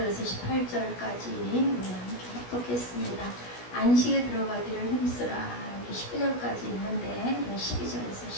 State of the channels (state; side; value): late; right; 16 ms